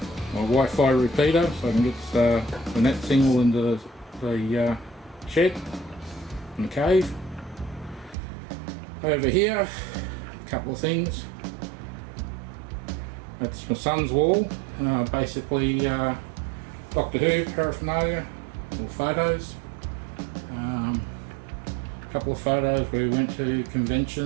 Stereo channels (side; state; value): left; drops out; at 8.2 s